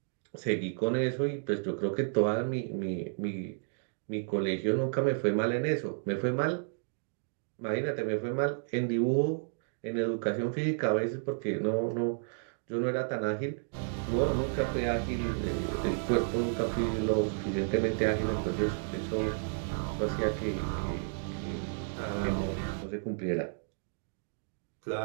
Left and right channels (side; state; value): left; silent; digital silence